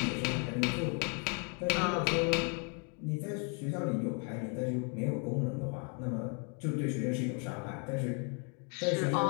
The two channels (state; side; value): quieter; right; 37.9 dB